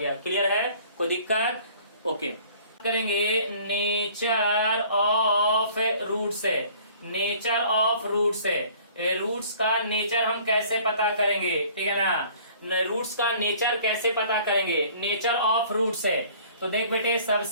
क्लियर है? कोई दिक्कत? ओके। करेंगे नेचर ऑफ रूट्स है, नेचर ऑफ रूट्स है। रूट्स का नेचर हम कैसे पता करेंगे, ठीक है ना। रूट्स का नेचर कैसे पता करेंगे, नेचर ऑफ रूट्स है। तो देख बेटे,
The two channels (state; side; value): inverted; both; correlation -0.53